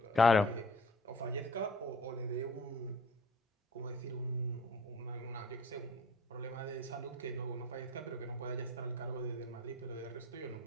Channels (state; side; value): normal; both; correlation 0.48